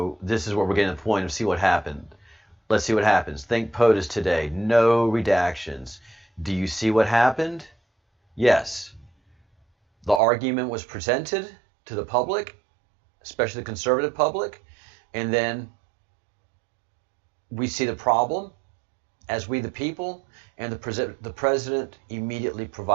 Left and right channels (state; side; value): drops out; left; at 10.2 s